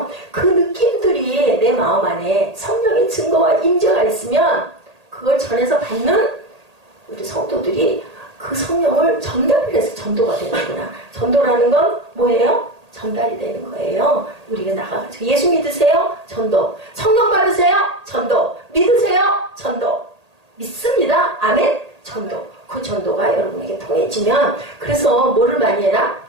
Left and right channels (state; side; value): late; left; 1.8 ms